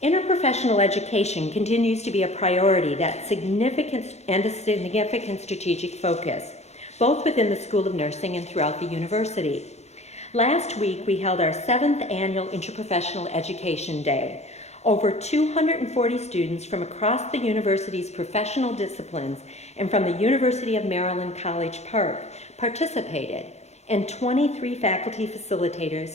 Interprofessional education continues to be a priority that's significant strategic focus, both within the School of Nursing and throughout the university. Last week, we held our 7th annual Interprofessional Education Day. Over 240 students from across the university's professional disciplines and from the University of Maryland College Park participated, and 23 faculty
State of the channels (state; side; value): late; right; 0.32 ms